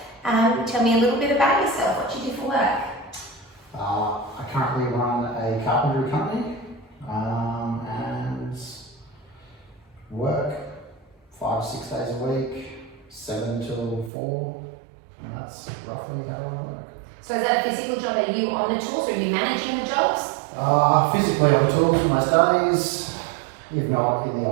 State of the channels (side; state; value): left; drops out; at 14.1 s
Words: Tell me a little bit about yourself, what you do for work. I currently run a carpentry company and work 5 to 6 days a week, 7 till 4, and that's roughly how I work. So is that a physical job? Are you on the tools or are you managing the jobs? Physically on the tools most days, if not in the